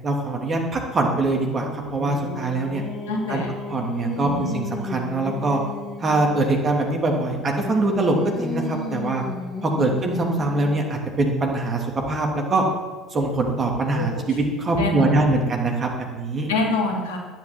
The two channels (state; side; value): normal; both; correlation 0.55